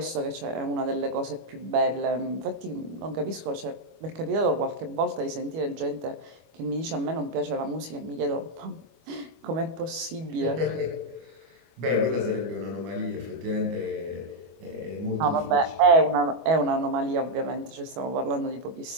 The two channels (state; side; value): late; left; 25 ms